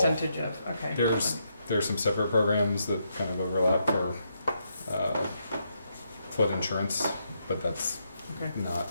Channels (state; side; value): inverted; both; correlation -0.79